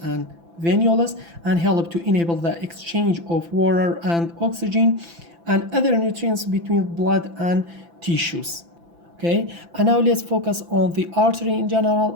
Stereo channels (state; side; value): late; left; 5.9 ms